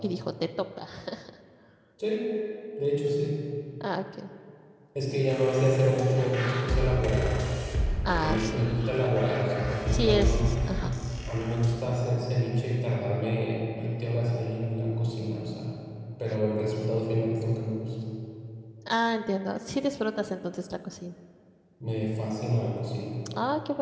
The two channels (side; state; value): both; identical; correlation 1.00